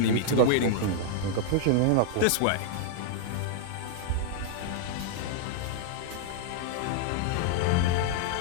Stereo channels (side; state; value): both; different; correlation 0.00